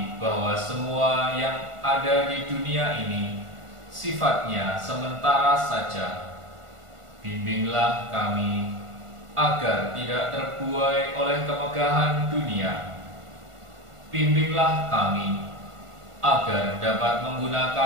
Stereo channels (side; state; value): left; late; 1.5 ms